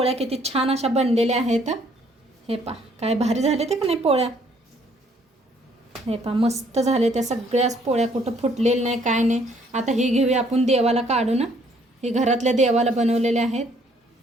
किती छान अशा बनलेल्या आहेत. हे पहा काय भारी झाले ते का नाही पोळ्या. हे पहा मस्त झाले त्या सगळ्याच पोळ्या, कुठं फुटलेलं नाही काय नाही. आता ही घेऊया आपण देवाला काढून. हे घरातल्या देवाला बनवलेले आहेत.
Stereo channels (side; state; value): both; normal; correlation 0.64